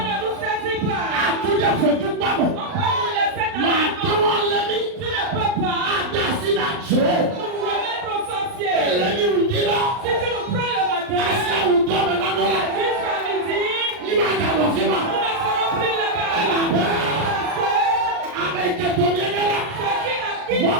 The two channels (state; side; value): late; left; 39 ms